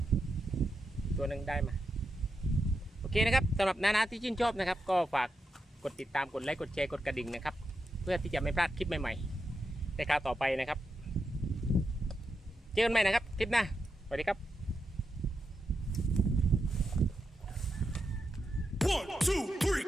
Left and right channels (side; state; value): both; normal; correlation 0.86